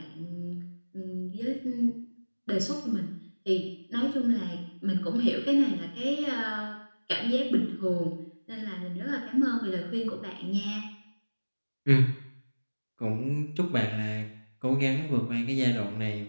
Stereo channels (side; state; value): both; inverted; correlation -1.00